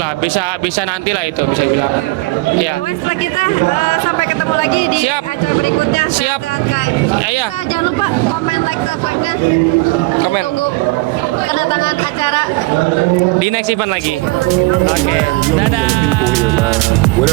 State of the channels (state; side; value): quieter; left; 22.7 dB